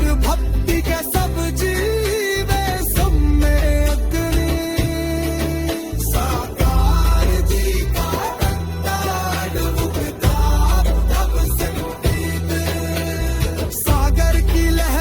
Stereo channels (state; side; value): identical; both; correlation 1.00